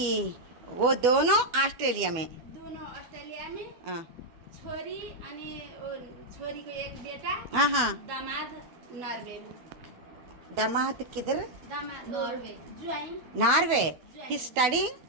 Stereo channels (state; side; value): late; left; 12 ms